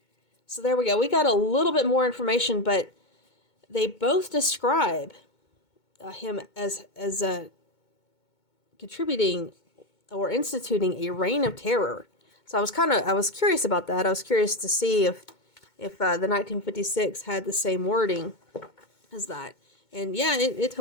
So there we go. We got a little bit more information, but they both describe him as contributing or instituting a reign of terror. So I was curious about that. I was curious to see if the 1956 had the same wording as that. And yeah, it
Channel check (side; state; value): right; late; 2.2 ms